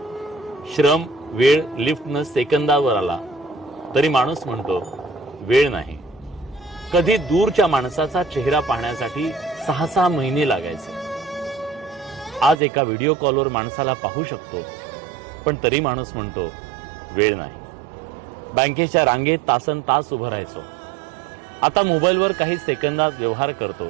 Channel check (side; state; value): left; drops out; at 12.6 s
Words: श्रम, वेळ लिफ्टनं सेकंदावर आला तरी माणूस म्हणतो वेळ नाही। कधी दूरच्या माणसाचा चेहरा पाहण्यासाठी 6-6 महिने लागायचे, आज एका व्हिडिओ कॉलवर माणसाला पाहू शकतो पण तरी माणूस म्हणतो वेळ नाही। बँकेच्या रांगेत तासनतास उभं राहायचो, आता मोबाईलवर काही सेकंदात व्यवहार करतो